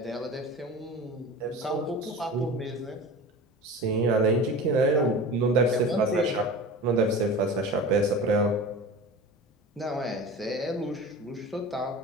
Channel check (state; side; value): normal; both; correlation 0.34